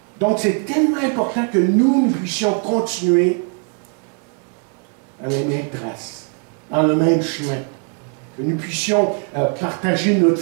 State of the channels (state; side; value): quieter; left; 38.3 dB